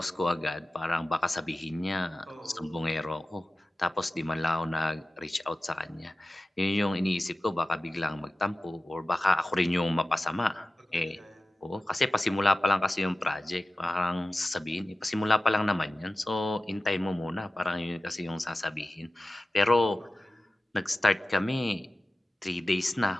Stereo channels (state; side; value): normal; both; correlation 0.95